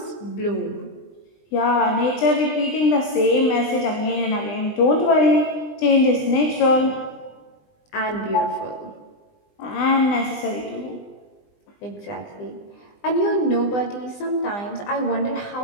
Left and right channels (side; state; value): right; late; 20 ms